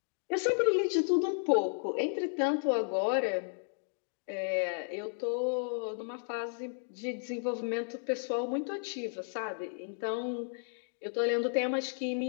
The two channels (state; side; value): silent; right; digital silence